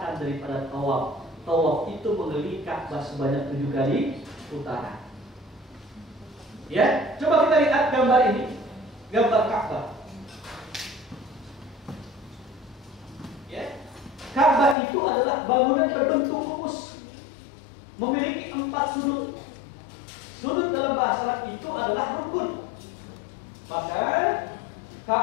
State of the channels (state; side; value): drops out; right; at 14.8 s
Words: daripada tawaf. Tawaf itu mengelilingi Ka'bah sebanyak 7 kali putaran. Ya, coba kita lihat gambar ini, gambar Ka'bah. Ya, Ka'bah itu adalah bangunan berbentuk rumus, memiliki 4 sudut. Sudut dalam bahasa Arab itu adalah rukun. Maka